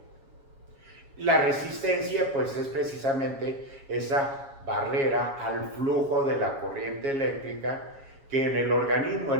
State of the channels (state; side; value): late; left; 7.3 ms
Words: La resistencia pues es precisamente esa barrera al flujo de la corriente eléctrica, que en el organismo,